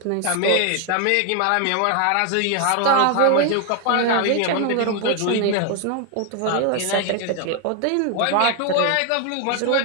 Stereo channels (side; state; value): both; different; correlation 0.01